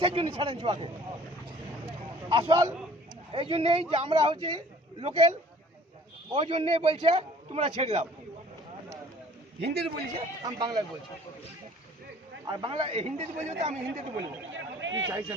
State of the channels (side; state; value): both; normal; correlation 0.54